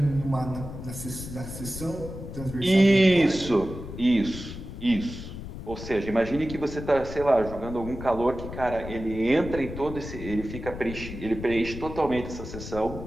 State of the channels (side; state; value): left; noise; rumble, 10 dB below the sound